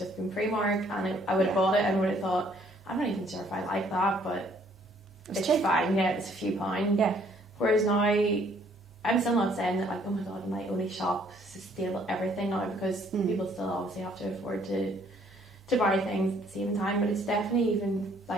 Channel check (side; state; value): both; normal; correlation 0.63